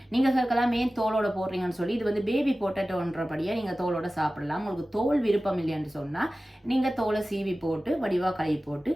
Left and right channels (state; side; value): normal; both; correlation 0.96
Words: நீங்க கேட்கலாம் ஏன் தோலோட போடுறீங்கன்னு சொல்லி. இது பேபி பொட்டேட்டோன்றபடியா நீங்க தோலோட சாப்பிடலாம். உங்களுக்கு தோல் விருப்பம் இல்லைன்னு சொன்னா நீங்க தோலை சீவி போட்டு வடிவா கழுவி போட்டு